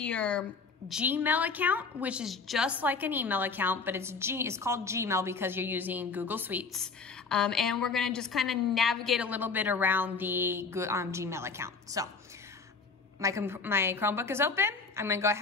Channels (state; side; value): quieter; right; 4.7 dB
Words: Gmail account, which is just like an email account, but it's called Gmail because you're using Google Suites. And we're gonna just kind of navigate a little bit around the Gmail account. So my Chromebook is open. I'm gonna go